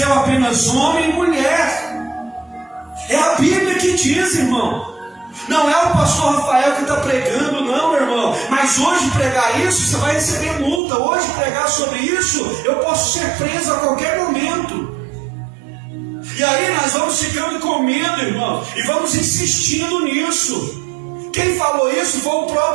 apenas homem e mulher. É a Bíblia que diz, irmão. Não é o pastor Rafael que está pregando, não, meu irmão. Mas hoje pregar isso, você vai receber multa. Hoje pregar sobre isso, eu posso ser preso a qualquer momento. E aí nós vamos ficando com medo, irmão, e vamos insistindo nisso. Quem falou isso foi o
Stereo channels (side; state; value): left; drops out; at 10.8 s